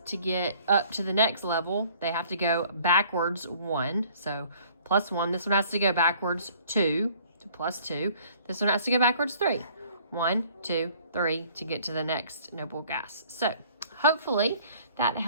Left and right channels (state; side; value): inverted; both; correlation -0.56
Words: to get up to the next level, they have to go backwards 1. So +1. This one has to go backwards 2 to +2. This one has to go backwards 3. 1, 2, 3 to get to the next noble gas. So hopefully that